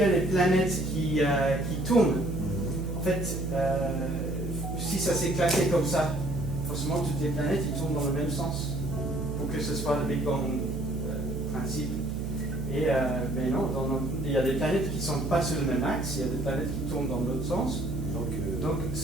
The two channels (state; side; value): noise; right; hum, 5 dB below the sound